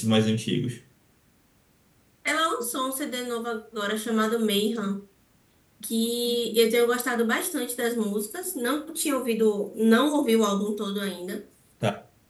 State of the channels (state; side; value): identical; both; correlation 1.00